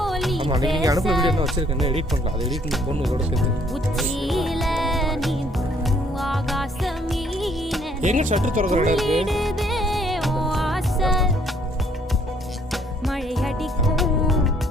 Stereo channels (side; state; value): both; normal; correlation 0.64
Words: ஆமாம், அன்றைக்கி நீங்கள் அனுப்புகிற வீடியோ என்ன வச்சுருக்கேன், எடிட் பண்ணலாம். அதை எடிட் பண்ணி பொண்ணு இதோட சேர்த்து எங்கே ஷட்டர் திறக்கிற இடம் இருக்குது. மழை அடிக்கும்